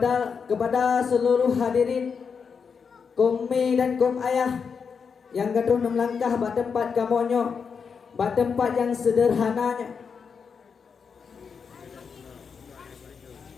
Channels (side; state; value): right; quieter; 6.0 dB